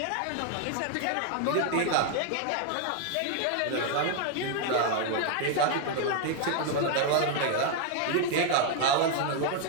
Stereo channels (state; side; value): different; both; correlation 0.00